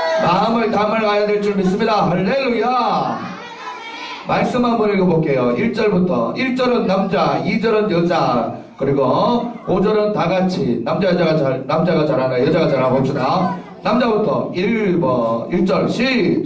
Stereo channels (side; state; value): both; identical; correlation 1.00